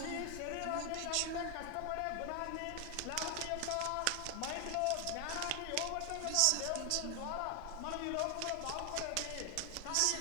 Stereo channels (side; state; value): both; different; correlation 0.00